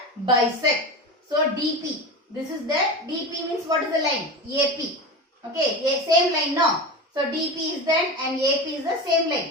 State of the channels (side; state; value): both; normal; correlation 0.26